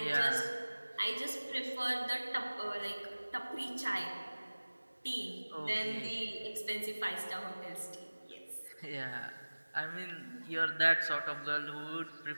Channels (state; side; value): inverted; both; correlation -1.00